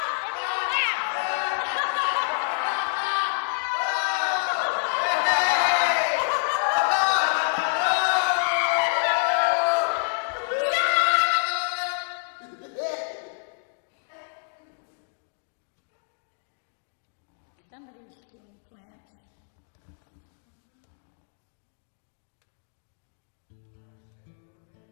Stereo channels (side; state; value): right; silent; digital silence